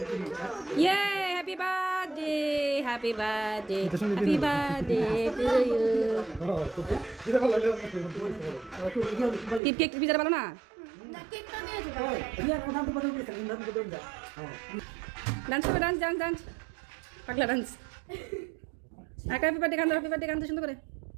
ইয়ে happy birthday happy birthday happy birthday to you cake পিজাটা ভালো না ডান্স করবে ডান্স ডান্স ডান্স পাগলা ডান্স হ্যাপি বার্থডে গান সুন্দর করে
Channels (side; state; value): left; drops out; at 9.6 s